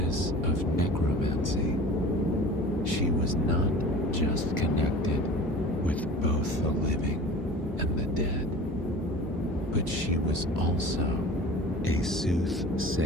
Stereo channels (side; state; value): both; normal; correlation 0.40